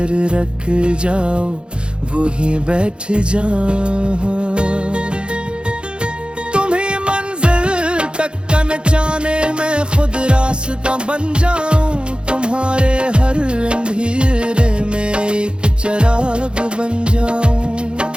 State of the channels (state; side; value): late; left; 0.054 ms